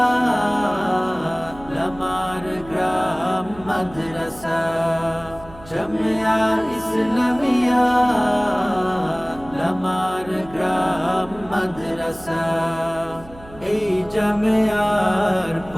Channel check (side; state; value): right; noise; hum, 20 dB below the sound